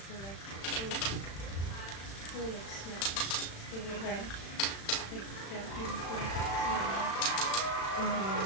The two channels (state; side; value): late; right; 36 ms